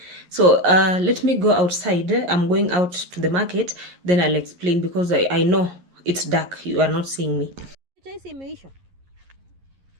So let me go outside. I'm going out to the market, then I'll explain, because I know it's dark. You are not seeing me. Chai simeisha.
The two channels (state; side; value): late; left; 11 ms